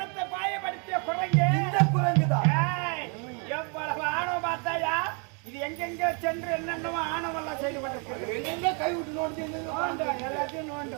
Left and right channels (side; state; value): left; quieter; 37.0 dB